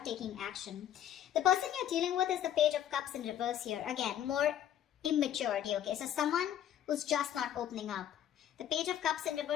taking action. The person you're dealing with is the Page of Cups in reverse here. Again, more immaturity, okay? So someone who's just not opening up. The Page of Cups in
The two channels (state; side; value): quieter; right; 10.7 dB